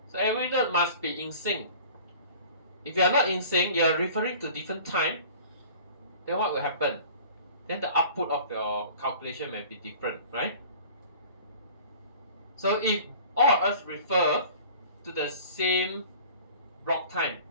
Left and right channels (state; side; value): inverted; both; correlation -0.45